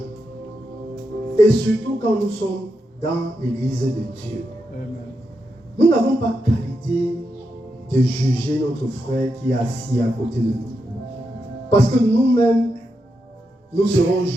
Et surtout quand nous sommes dans l'église de Dieu. Amen. Nous n'avons pas qualité de juger notre frère qui est assis à côté de nous. Parce que nous-mêmes, nous serons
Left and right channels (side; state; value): both; normal; correlation 0.85